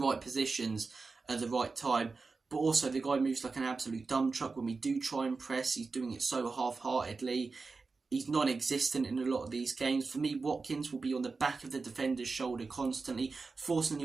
positions at the right time. But also, the guy moves like an absolute dump truck. When we do try and press, he's doing it so half-heartedly. He's non-existent in a lot of these games. For me, Watkins will be on the back of the defender's shoulder constantly, forcing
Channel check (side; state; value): left; quieter; 4.2 dB